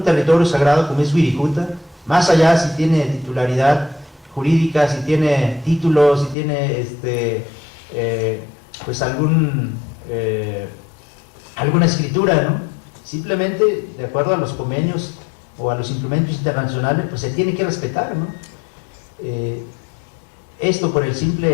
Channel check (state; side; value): drops out; right; at 6.4 s